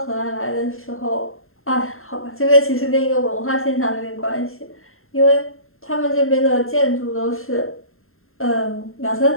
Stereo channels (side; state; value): right; late; 0.61 ms